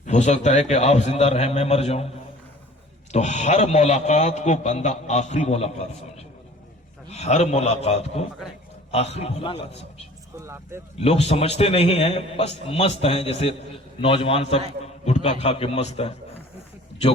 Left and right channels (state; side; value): normal; both; correlation 0.48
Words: ہو سکتا ہے کہ آپ زندہ رہیں میں مر جاؤں. تو ہر ملاقات کو بندہ آخری ملاقات سمجھے، ہر ملاقات کو آخری ملاقات سمجھے. لوگ سمجھتے نہیں ہیں، بس مست ہیں، جیسے نوجوان سب گٹکا کھا کے مست ہیں،